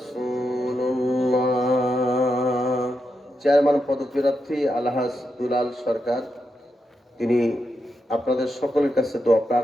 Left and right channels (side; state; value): both; normal; correlation 0.85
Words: চেয়ারম্যান পদপ্রার্থী আলহাজ দুলাল সরকার, তিনি আপনাদের সকলের কাছে দোয়া